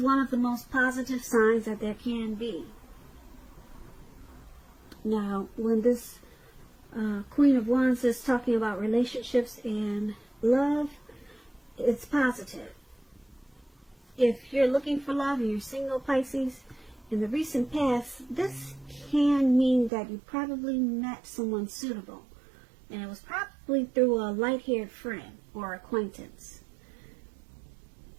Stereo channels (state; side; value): drops out; left; at 19.9 s